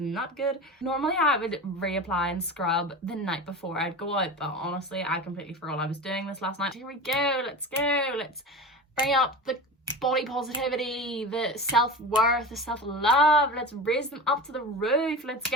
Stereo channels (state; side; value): normal; both; correlation 0.29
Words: good. Normally I would reapply and scrub the night before I'd go out, but honestly I completely forgot I was doing this last night. Here we go. Let's bring up the body positivity, the self-worth, the self-love. Let's raise them up to the roof. Let's